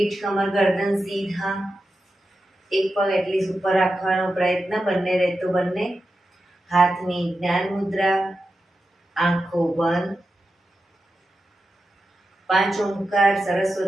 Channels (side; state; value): both; normal; correlation 0.90